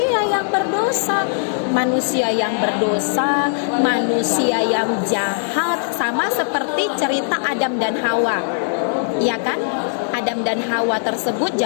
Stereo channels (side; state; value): right; silent; 66 dB below the other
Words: yang berdosa. Manusia yang berdosa, manusia yang jahat. Sama seperti cerita Adam dan Hawa. Ya kan? Adam dan Hawa tersebut